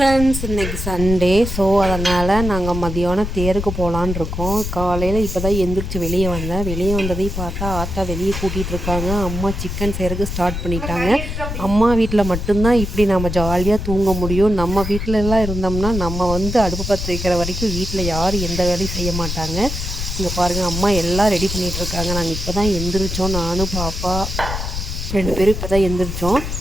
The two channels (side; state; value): left; noise; rumble, 5 dB below the sound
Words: இன்றைக்கி Sunday. So அதனால் நாங்கள் மதியானம் தேருக்கு போகலான் இருக்கோம். காலையில் இப்போ தான் எந்திரிச்சு வெளியே வந்ததையும் பார்த்தா ஆத்தா வெளியே கூட்டிகிட்ருக்காங்க. அம்மா சிக்கன் செய்கிறதுக்கு ஸ்டார்ட் பண்ணிட்டாங்க. அம்மா வீட்டில் மட்டும்தான் இப்படி நம்ம ஜாலியாக தூங்க முடியும். நம்ம வீட்டிலலாம் இருந்தோம்னா நம்ம அடுப்பு பற்ற வைக்கிற வரைக்கும் வீட்டில் யாரும் எந்த வேலையும் செய்ய மாட்டாங்க. இங்கே பாருங்கள், அம்மா எல்லாம் ரெடி பண்ணிகிட்ருக்காங்க. நாங்கள் இப்போ தான் எந்திரிச்சோம். நானும் பாப்பா 2 பேரும் இப்போ தான் எந்திரிச்சோம்.